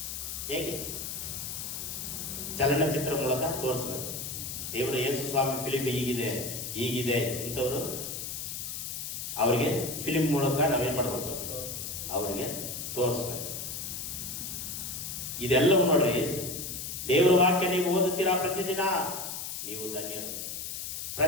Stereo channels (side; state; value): left; noise; hiss, 6 dB below the sound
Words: ಹೇಗೆ? ಚಲನಚಿತ್ರ ಮೂಲಕ ತೋರಿಸ್ಬೇಕು. ದೇವರ ಯೇಸು ಸ್ವಾಮಿ ಫಿಲಿಂ ಹೀಗಿದೆ ಇಂಥವ್ರು ಅವರಿಗೆ ಫಿಲಿಂ ಮೂಲಕ ನಾವೇನ್ ಮಾಡ್ಬೇಕು? ಅವರಿಗೆ ತೋರಿಸ್ಬೇಕು. ಇದೆಲ್ಲವೂ ನೋಡ್ರಿ, ದೇವರ ವಾಕ್ಯ ನೀವು ಓದುತ್ತೀರಾ ಪ್ರತಿದಿನ, ನೀವು ಧನ್ಯರು.